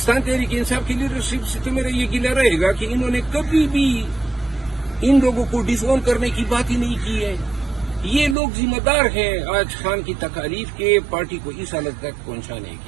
تحریک انصاف کی لیڈرشپ سے تو میرا یہ گلہ رہے گا کہ انہوں نے کبھی بھی ان لوگوں کو ڈس اون کرنے کی بات ہی نہیں کی ہے۔ یہ لوگ ذمہ دار ہیں آج خان کی تکالیف کے، پارٹی کو اس حالت تک پہنچانے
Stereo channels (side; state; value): left; drops out; at 8.3 s